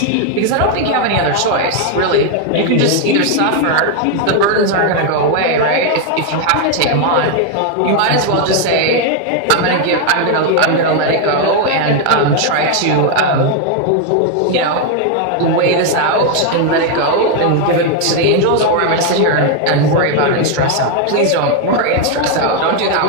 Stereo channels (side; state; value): both; different; correlation 0.01